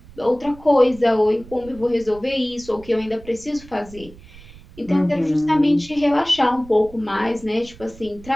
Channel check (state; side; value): noise; right; rumble, 20 dB below the sound